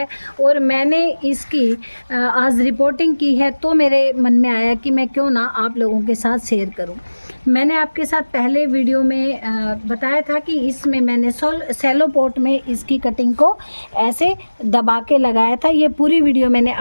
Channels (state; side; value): inverted; both; correlation -1.00